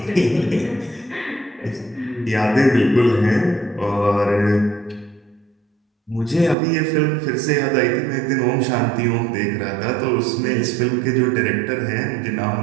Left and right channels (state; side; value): drops out; left; at 6.6 s